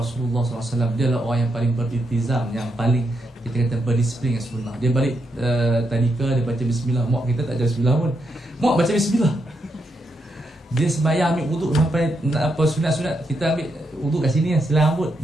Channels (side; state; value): both; normal; correlation 0.82